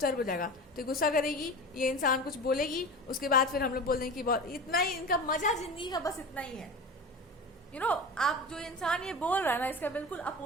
हो जाएगा। तो गुस्सा करेगी, ये इंसान कुछ बोलेगी, उसके बाद फिर हम लोग बोल देंगे कि बहुत इतना ही इनका मजा जिंदगी का बस इतना ही है। आप जो इंसान ये बोल रहा है ना इसका बिल्कुल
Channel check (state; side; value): normal; both; correlation 0.31